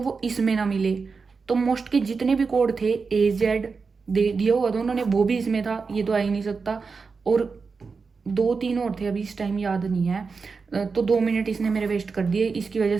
इसमें ना मिले। तो मोस्ट के जितने भी कोड थे AZ दे दिया हुआ था उन्होंने, वो भी इसमें था, ये तो आ ही नहीं सकता। और 2-3 और थे, अभी इस टाइम याद नहीं है। तो 2 मिनट इसने मेरे वेस्ट कर दिए। इसकी वजह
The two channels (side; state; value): left; quieter; 4.8 dB